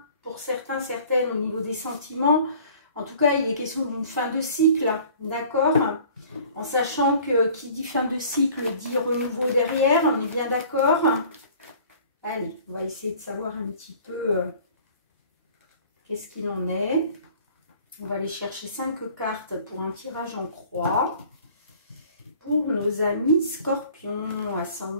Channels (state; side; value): inverted; both; correlation -0.50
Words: pour certains, certaines au niveau des sentiments. En tout cas, il est question d'une fin de cycle, d'accord? En sachant que qui dit fin de cycle dit renouveau derrière, on est bien d'accord? Allez, on va essayer de savoir un petit peu qu'est-ce qu'il en est. On va aller chercher 5 cartes pour un tirage en croix. Pour nos amis scorpions,